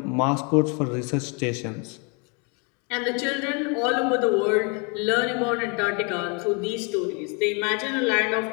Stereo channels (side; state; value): right; quieter; 33.7 dB